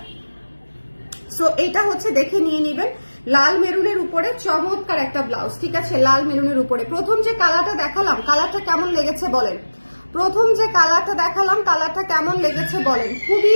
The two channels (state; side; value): inverted; both; correlation -1.00